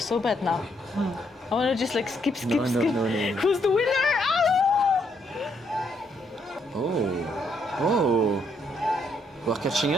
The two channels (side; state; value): both; normal; correlation 0.73